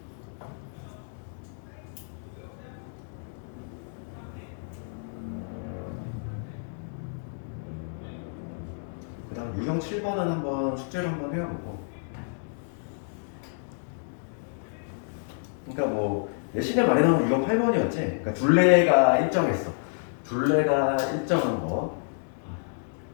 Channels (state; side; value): silent; right; digital silence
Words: 그 다음 유형 7번은 한번 숙제를 한번 해보고, 그러니까 뭐 내신에 말해놓은 유형 8번이었지. 그러니까 둘레가 일정했어. 둘레가 일정한 거.